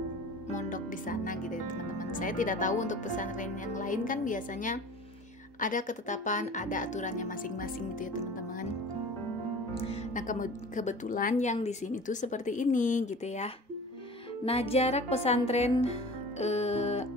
mondok di sana gitu ya teman-teman. Saya tidak tahu untuk pesantren yang lain, kan biasanya ada ketetapan, ada aturannya masing-masing gitu ya teman-teman. Nah, kebetulan yang di sini tuh seperti ini gitu ya. Nah, jarak pesantren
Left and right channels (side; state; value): both; normal; correlation 0.40